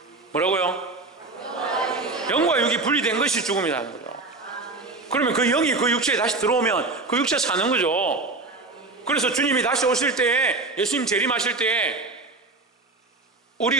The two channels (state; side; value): quieter; left; 3.4 dB